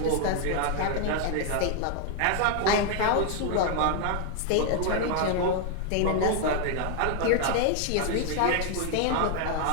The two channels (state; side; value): different; both; correlation 0.00